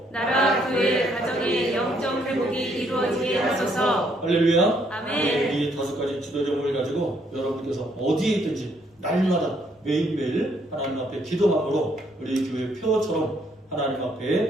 나라, 교회, 가정의 영적 회복이 이루어지게 하소서. 할렐루야. 아멘. 이 5가지 기도 제목을 가지고 여러분께서 어디에 있든지 날마다 매일매일 하나님 앞에 기도함으로 우리 교회 표처럼 하나님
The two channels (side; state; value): both; normal; correlation 0.69